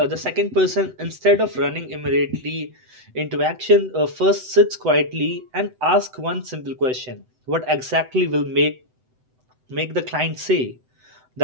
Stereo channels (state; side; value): late; left; 7.9 ms